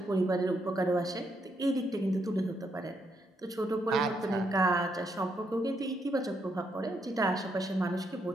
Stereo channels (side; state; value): both; normal; correlation 0.77